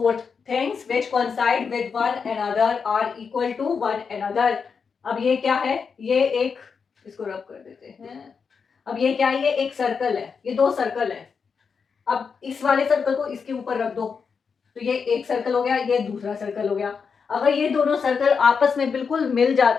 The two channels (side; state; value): right; quieter; 5.8 dB